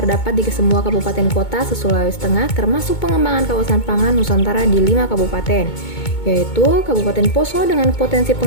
di semua kabupaten kota se-Sulawesi Tengah, termasuk pengembangan kawasan pangan Nusantara di 5 kabupaten, yaitu Kabupaten Poso dengan potensi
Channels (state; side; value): late; right; 2.2 ms